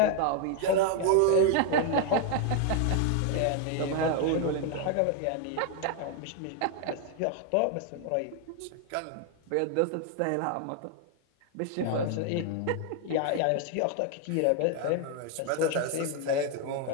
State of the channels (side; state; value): both; different; correlation 0.00